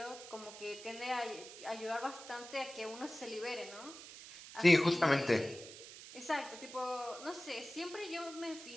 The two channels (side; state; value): right; noise; hiss, 14 dB below the sound